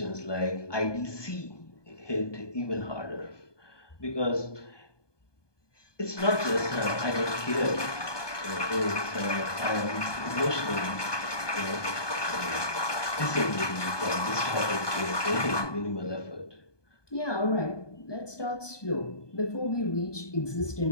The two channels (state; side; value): late; right; 1.2 ms